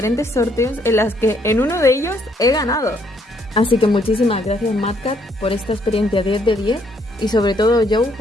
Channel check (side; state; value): both; normal; correlation 0.69